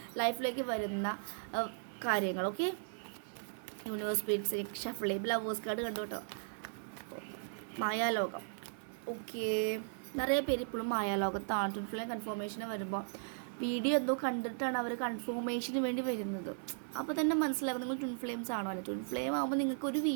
ലൈഫിലേക്ക് വരുന്ന കാര്യങ്ങൾ. Okay, universe beats shuffle lovers card കണ്ടു കേട്ടോ. മായാലോകം. ഓക്കെ, നിറയെ പേര് ഇപ്പോഴും മായാലോകത്താണ്. ട്വിൻ ഫ്ലെയിം കൺഫർമേഷന് വരുമ്പോൾ വീഡിയോ എന്തോ കണ്ടിട്ടാണ് അവർ കൺഫർമേഷന് വേണ്ടി വരുന്നത്. അപ്പോൾ തന്നെ മനസ്സിലാക്കും നിങ്ങൾ ട്വിൻ ഫ്ലെയിംസ് ആണോ അല്ലേ. ട്വിൻ ഫ്ലെയിം ആകുമ്പോൾ നിങ്ങൾക്ക് ഒരു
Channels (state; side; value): silent; left; digital silence